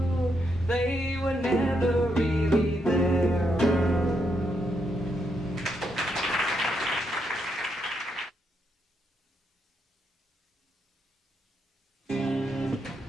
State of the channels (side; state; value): both; normal; correlation 0.79